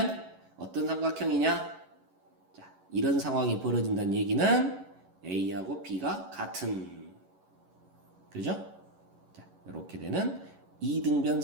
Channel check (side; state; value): left; late; 11 ms